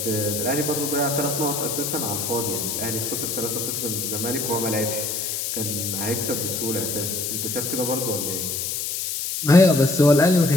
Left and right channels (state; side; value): noise; left; hiss, 2 dB below the sound